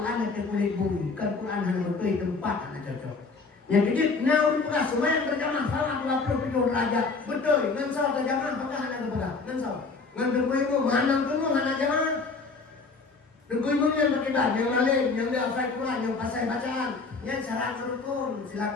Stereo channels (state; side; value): quieter; right; 4.2 dB